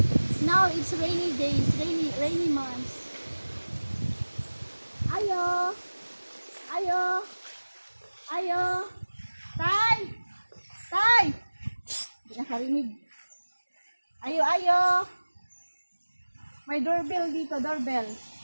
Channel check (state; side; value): inverted; both; correlation -1.00